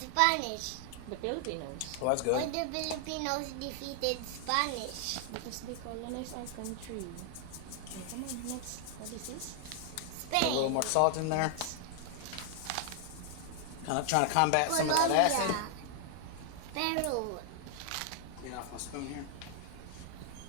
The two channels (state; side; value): different; both; correlation 0.00